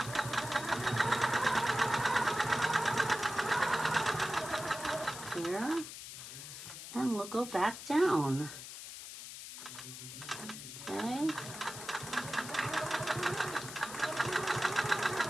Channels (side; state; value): left; noise; hiss, 11 dB below the sound